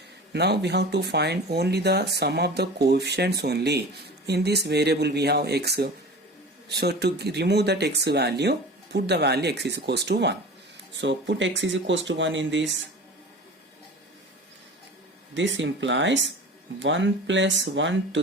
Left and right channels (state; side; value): normal; both; correlation 0.37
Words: Now we have to find only the sum of the coefficients only. In this variable we have x. So to remove that x value, put the value x is equals to 1. So put x is equals to 1 in this. This implies 1 plus 1